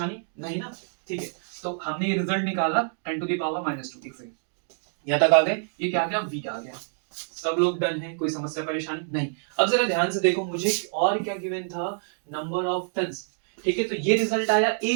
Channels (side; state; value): left; silent; digital silence